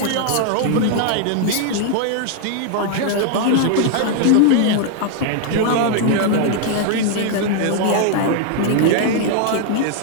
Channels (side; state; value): both; different; correlation 0.00